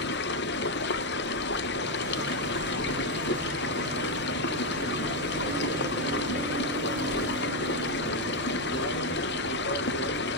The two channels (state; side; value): normal; both; correlation 0.04